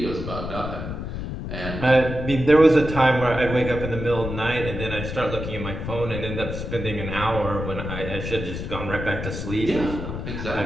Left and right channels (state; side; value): noise; left; rumble, 6 dB below the sound